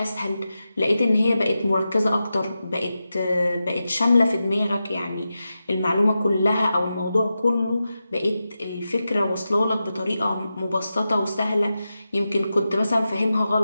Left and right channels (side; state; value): both; inverted; correlation -0.91